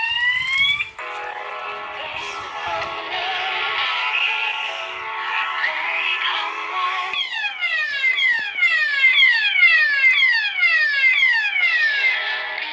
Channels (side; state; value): both; identical; correlation 1.00